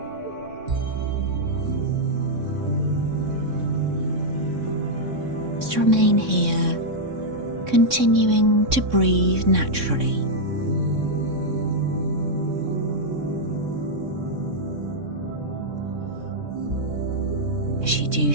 Just remain here, continuing to breathe naturally. As you do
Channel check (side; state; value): left; late; 3.6 ms